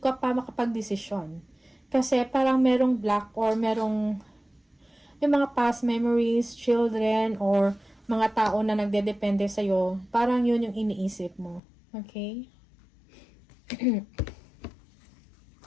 pa makapag-desisyon. Kasi parang merong block or merong yung mga past memories, children, or mga tao na nagdedepende sa'yo, parang yun yung iniisip mo. Okay?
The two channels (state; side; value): drops out; right; at 11.6 s